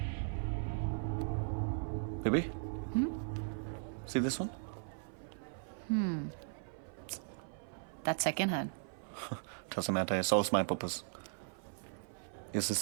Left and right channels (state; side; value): silent; left; 52 dB below the other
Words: Baby? See this one? That's second hand. Doesn't matter, it solves my purpose. Is this